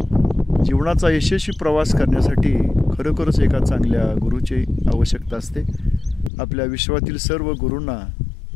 जीवनाचा यशस्वी प्रवास करण्यासाठी खरोखरच एका चांगल्या गुरुची आवश्यकता असते। आपल्या विश्वातील सर्व गुरूंना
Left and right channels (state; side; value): drops out; right; at 6.3 s